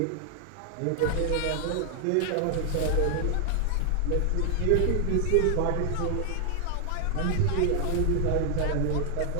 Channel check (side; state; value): both; different; correlation 0.00